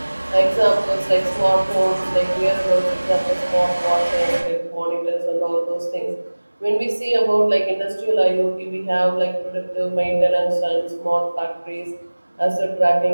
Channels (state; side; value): inverted; both; correlation -1.00